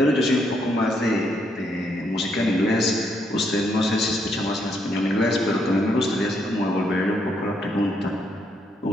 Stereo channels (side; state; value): both; normal; correlation 0.75